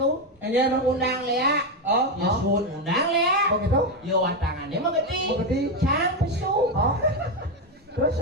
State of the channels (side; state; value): both; normal; correlation 0.09